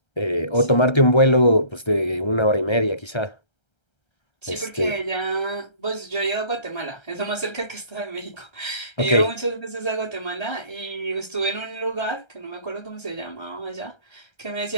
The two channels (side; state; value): right; late; 1.3 ms